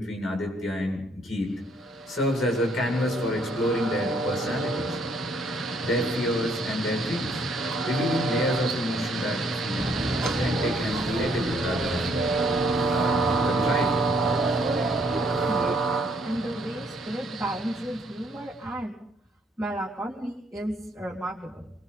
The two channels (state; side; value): normal; both; correlation 0.67